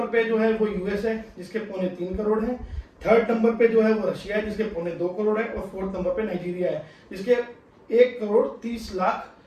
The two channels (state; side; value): identical; both; correlation 1.00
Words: पे जो है वो यूएस है, जिसके 3.25 करोड़ है। थर्ड नंबर पे जो है वो रशिया है, जिसके 2.25 करोड़ है। और फोर्थ नंबर पे नाइजीरिया है, जिसके 1 करोड़ 30